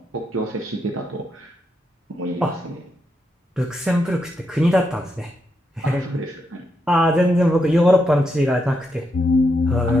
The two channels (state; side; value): normal; both; correlation 0.82